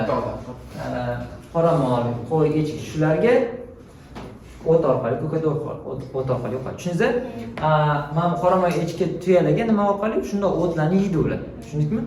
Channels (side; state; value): both; identical; correlation 1.00